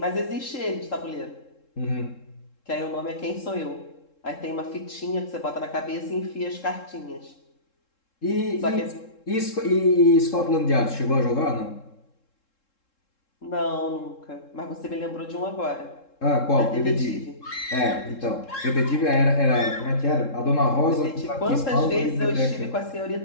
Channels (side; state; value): right; late; 3.7 ms